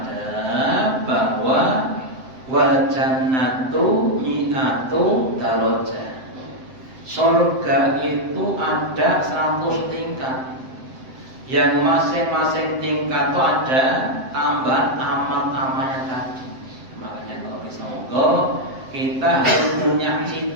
bahwa wal jannatu mi'atu darajah. Surga itu ada 100 tingkat. Yang masing-masing tingkat itu ada tambahan amal-amalnya tadi. Makanya kalau bisa monggo kita harus punya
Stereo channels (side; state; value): left; late; 7.8 ms